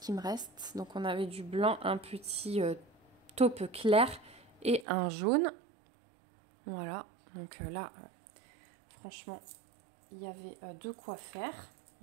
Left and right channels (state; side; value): drops out; left; at 4.9 s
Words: me reste. Donc on avait du blanc, un petit taupe clair et un jaune. Voilà. Donc là, franchement, il y avait de quoi faire.